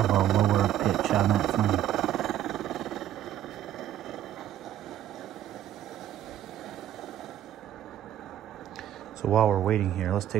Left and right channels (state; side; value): quieter; left; 11.5 dB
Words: a lower pitch on that flame. So while we're waiting here, let's